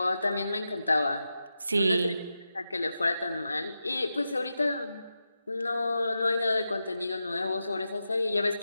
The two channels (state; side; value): inverted; both; correlation -0.89